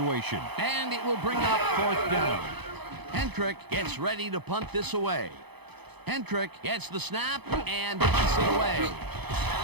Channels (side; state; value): left; late; 0.99 ms